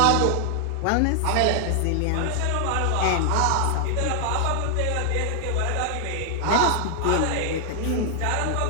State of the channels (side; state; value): both; different; correlation 0.00